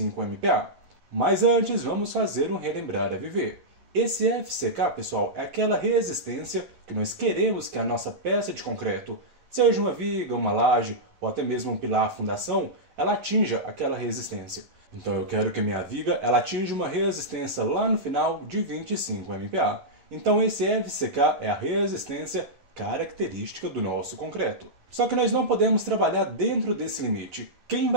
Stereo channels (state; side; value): late; left; 11 ms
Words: MPa. Mas antes, vamos fazer um relembrar a viver. Esse FCK, pessoal, é aquela resistência que nós queremos que a nossa peça de concreto, seja uma viga, uma laje ou até mesmo um pilar fundação, ela atinja aquela resistência. Então eu quero que a minha viga ela atinja uma resistência lá no final de 25 MPa. Então esse FCK é a resistência característica do nosso concreto. Só que nós não podemos trabalhar dentro desse limite. Quem